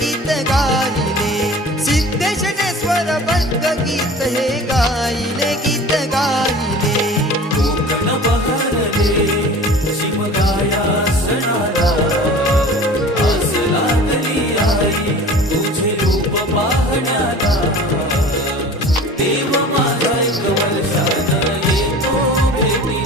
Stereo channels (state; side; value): normal; both; correlation 0.41